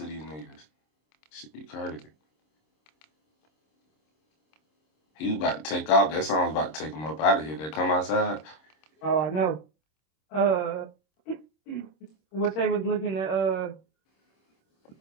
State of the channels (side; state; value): right; late; 26 ms